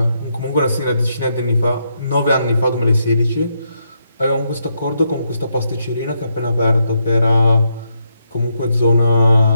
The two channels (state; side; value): inverted; both; correlation -0.79